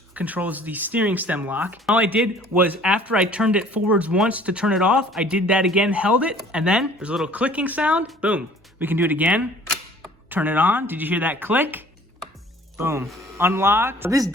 controls the steering stem lock. All I did was after I turned it forwards once to turn it off, I did that again, held it, and then there's a little clicking sound. Boom. We can do it again. Turn it on. Did you hear that click? Boom. Unlocked. This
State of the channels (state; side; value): normal; both; correlation 0.52